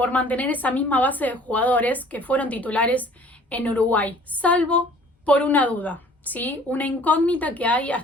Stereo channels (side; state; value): both; normal; correlation 0.52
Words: mantener esa misma base de jugadores que fueron titulares en Uruguay, salvo por una duda, ¿sí? Una incógnita que hay